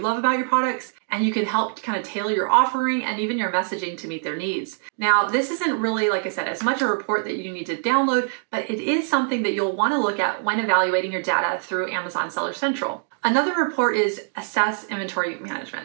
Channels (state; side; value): silent; left; 61 dB below the other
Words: love about your products, and you can help kind of tailor your offering and even your messaging to meet their needs. Now, this isn't really, like I said, as much a report that you need to download, but it is something that you'll want to look at when evaluating your data through Amazon Seller Central. Another report is assess inventory